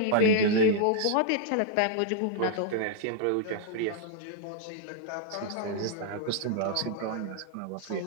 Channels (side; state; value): both; different; correlation -0.01